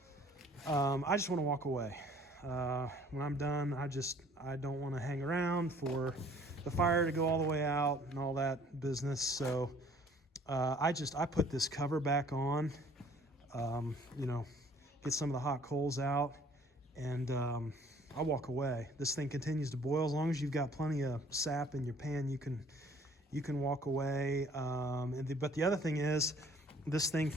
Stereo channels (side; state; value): both; normal; correlation 0.56